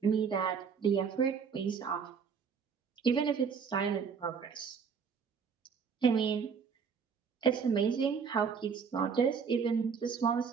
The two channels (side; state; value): left; quieter; 6.2 dB